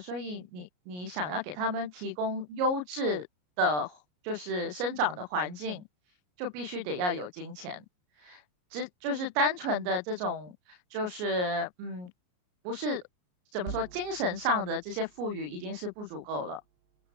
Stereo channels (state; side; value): late; left; 33 ms